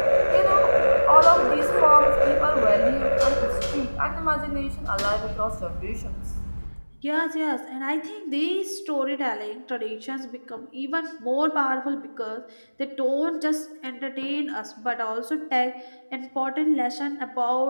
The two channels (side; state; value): both; inverted; correlation -1.00